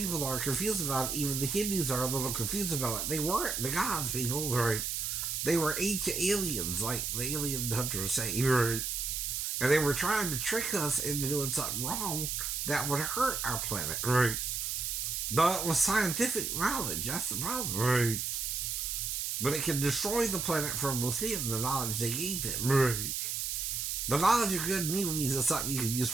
are confused about it. Even the Hindus are a little confused about it. They weren't the gods, people, right? They were ancient aliens, like the alien hunters say, right? And they were trying to trick us into doing something wrong that would hurt our planet, right? Though it was scientific knowledge, that's the problem, right? But it can destroy the planet from within, the knowledge they gave it, right? The knowledge of good and evil means it's something you can use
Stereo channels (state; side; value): noise; right; hiss, 2 dB below the sound